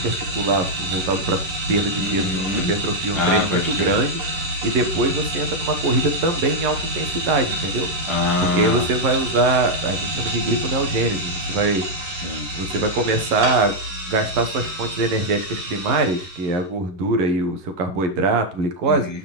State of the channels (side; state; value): left; late; 11 ms